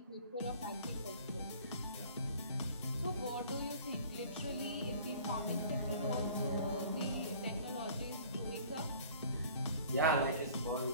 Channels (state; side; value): inverted; both; correlation -0.50